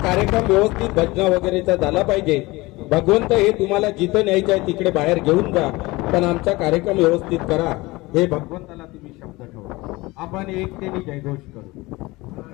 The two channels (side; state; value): right; quieter; 21.6 dB